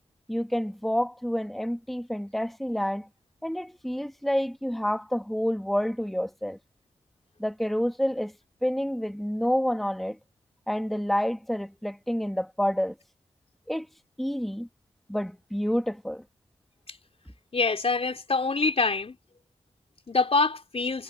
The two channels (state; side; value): normal; both; correlation 0.74